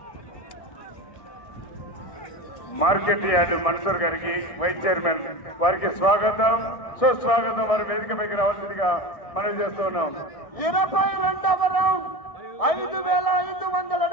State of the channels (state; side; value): late; right; 1.6 ms